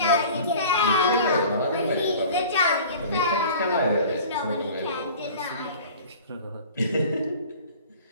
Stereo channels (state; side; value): inverted; both; correlation -0.43